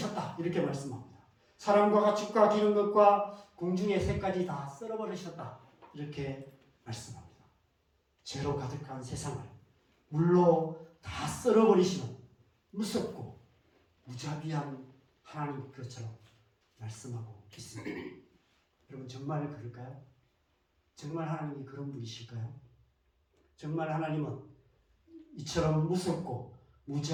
이렇게 말씀합니다. 사람과 가축과 기는 것과 공중의 새까지 다 썰어버리셨다 이렇게 말씀합니다. 죄로 가득한 세상을 물로 다 썰어버리시는 무섭고 무자비한 하나님 그처럼 말씀하고 있습니다. 여러분 정말 그럴까요? 정말 하나님이 그런 분이실까요? 정말 하나님은 이처럼 무섭고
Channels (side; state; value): both; identical; correlation 1.00